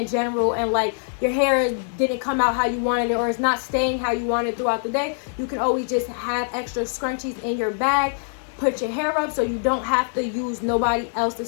general and like your hair didn't come out how you wanted it, or it's not staying how you wanted throughout the day, you can always just have extra scrunchies in your bag. Put your hair up so you don't have to use nobody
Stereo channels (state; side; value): silent; right; digital silence